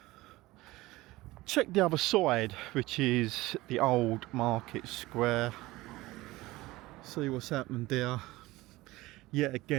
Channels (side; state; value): left; quieter; 19.1 dB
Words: Check the other side, which is the old market square. See what's happened there. Yet